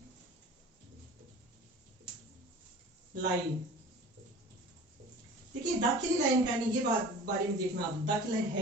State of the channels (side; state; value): both; normal; correlation 0.41